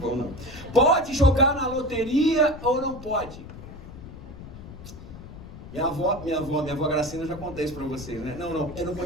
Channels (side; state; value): left; noise; rumble, 14 dB below the sound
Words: não. Pode jogar na loteria ou não pode? Minha avó Gracina, eu já contei isso pra vocês, né? Não, eu não